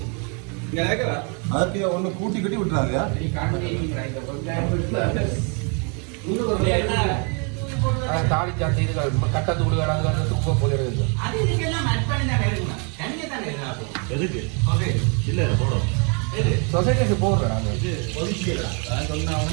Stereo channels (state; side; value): quieter; left; 36.8 dB